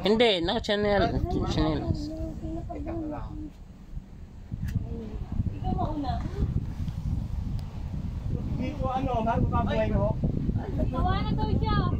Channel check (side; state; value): both; identical; correlation 1.00